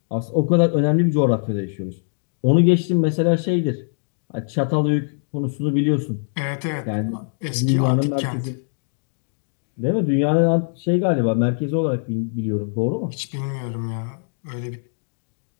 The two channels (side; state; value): right; silent; digital silence